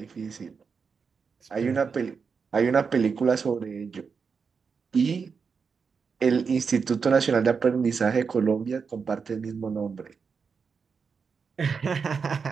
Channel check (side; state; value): left; quieter; 5.6 dB